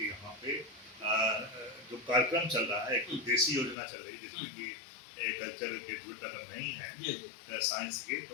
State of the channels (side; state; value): right; drops out; at 3.8 s